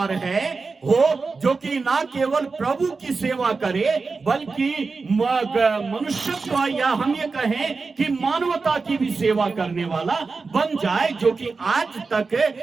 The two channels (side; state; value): left; quieter; 4.3 dB